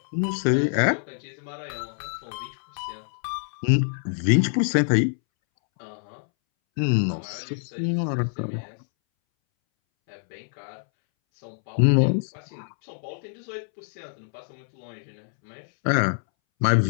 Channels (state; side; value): silent; right; 61 dB below the other